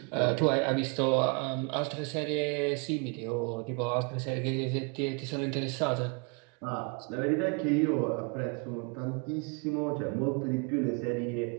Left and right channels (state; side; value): quieter; left; 34.8 dB